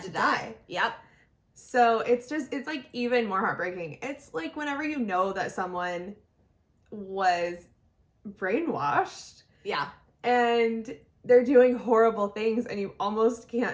to die. Yep. So it's like even more heartbreaking. It's like whenever you know that someone was brainwashed Yeah. and they're doing horrible things, and you almost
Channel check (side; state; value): both; identical; correlation 1.00